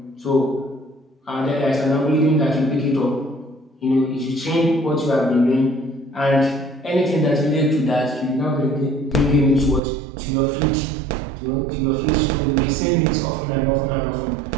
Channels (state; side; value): drops out; left; at 9.8 s